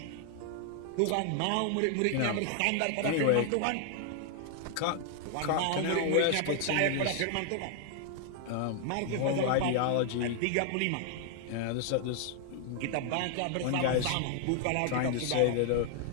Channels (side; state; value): both; different; correlation 0.00